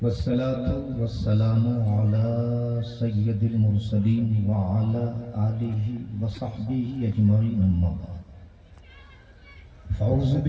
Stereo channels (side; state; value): both; identical; correlation 1.00